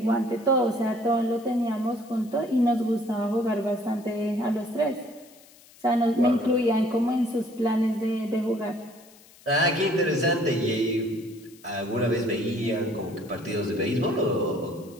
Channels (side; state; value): left; noise; hiss, 25 dB below the sound